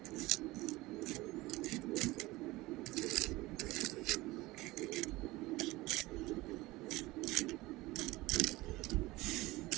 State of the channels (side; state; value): left; quieter; 19.9 dB